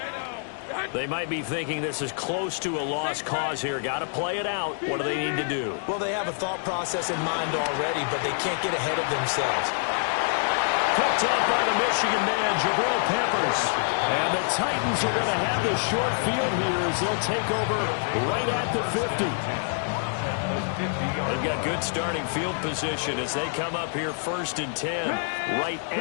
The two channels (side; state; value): right; silent; digital silence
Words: They might be thinking this is close to a lost cause here. Got to play it out. What do they need to do? Well, they have a thought process in mind already, but they can't get ahead of themselves. Picked up by the Michigan man, Jabril Peppers. And the Titans are going to have the short field here as they'll take over right at the 50. They've got good starting field position as they come up here 1st and 10, right